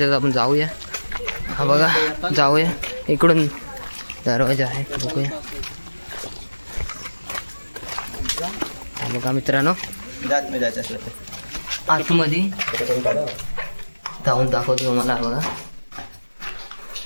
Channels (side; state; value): both; inverted; correlation -1.00